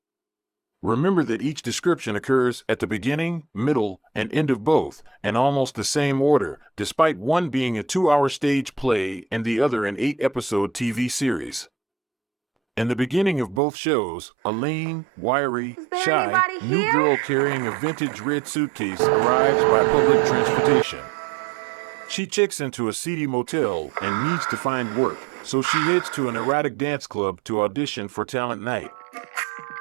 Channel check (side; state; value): left; drops out; at 13.6 s